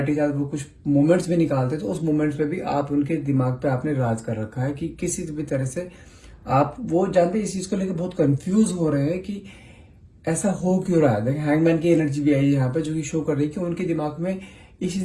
के साथ वो कुछ मोमेंट्स भी निकालते हैं, तो उस मोमेंट्स पे भी आप उनके दिमाग पे आपने राज कर रखा है कि किसी भी तरह से आप, वो जानते हैं, इस चीज को लेकर बहुत कंफ्यूज हो रहे हैं कि ऐसा हो क्यों रहा है। देखिए, हैंगमैन की एनर्जी भी आई है यहाँ पे, जो कि शो कर रही है कि उनके दिमाग में इस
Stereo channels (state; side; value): identical; both; correlation 1.00